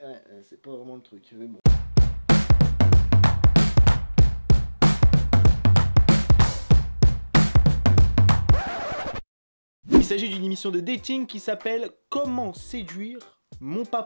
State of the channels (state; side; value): inverted; both; correlation -1.00